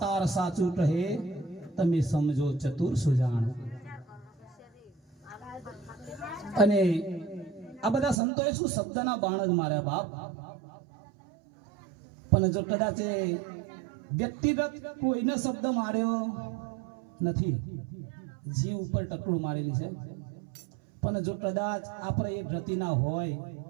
સાચું કહે, તમે સમજો ચતુર સુજાણ. અને આ બધા સંતોએ શું શબ્દના બાણ જ માર્યા બાપ. પણ જો કદાચ વ્યક્તિગત કોઈને શબ્દ માર્યો નથી, જીવ ઉપર ટકડું મારેલી છે. પણ જો કદાચ આપણે એ ગતિના હોય,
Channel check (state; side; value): drops out; left; at 8.2 s